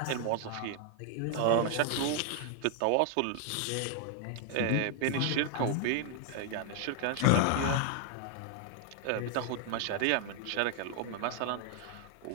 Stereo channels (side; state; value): both; different; correlation 0.00